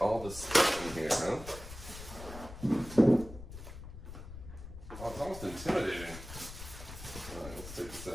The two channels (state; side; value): noise; left; rumble, 12 dB below the sound